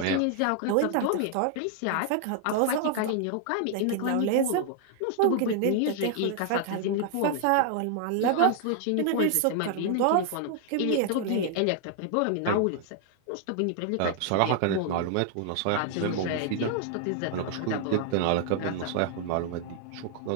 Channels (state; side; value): different; both; correlation 0.00